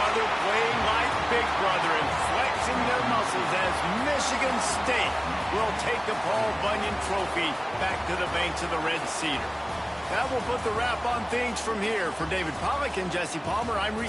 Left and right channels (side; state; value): both; identical; correlation 1.00